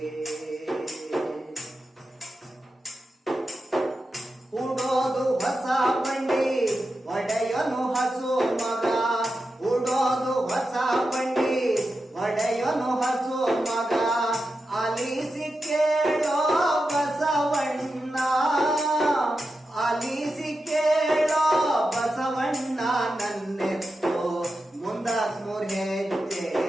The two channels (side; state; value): both; normal; correlation 0.90